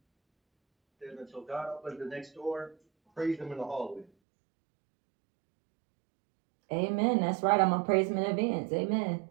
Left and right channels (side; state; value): left; drops out; at 4.0 s